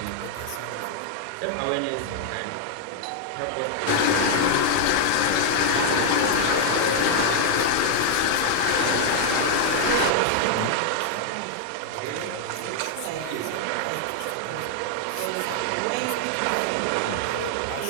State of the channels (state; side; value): different; both; correlation 0.00